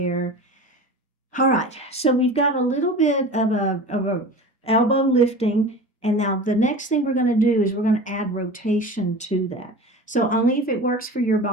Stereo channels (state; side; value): normal; both; correlation 0.35